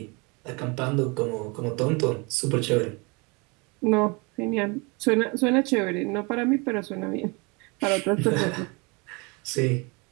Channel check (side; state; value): left; quieter; 29.0 dB